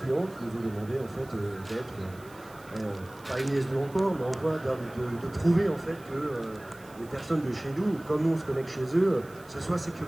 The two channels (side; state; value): right; noise; hiss, 24 dB below the sound